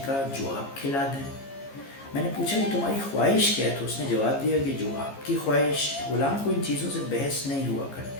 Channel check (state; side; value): late; right; 15 ms